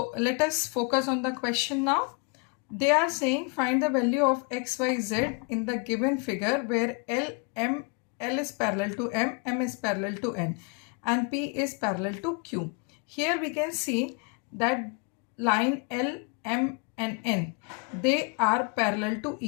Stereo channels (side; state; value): right; quieter; 33.9 dB